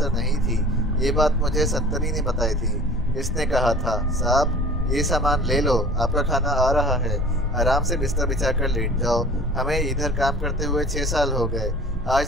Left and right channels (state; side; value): normal; both; correlation 0.44